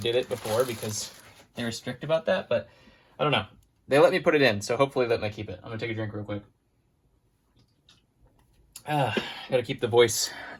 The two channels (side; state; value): both; identical; correlation 1.00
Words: it before because they were strict about that, but I don't know. They let me put it in, so hopefully let me keep it. I'm gonna take a drink real quick. Gotta keep the voice